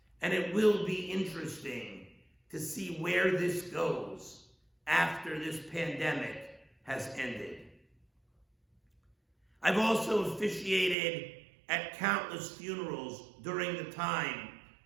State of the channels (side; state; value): left; drops out; at 11.0 s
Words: And it will be interesting to see where this goes after this pandemic has ended. I've also officiated at countless funerals during the time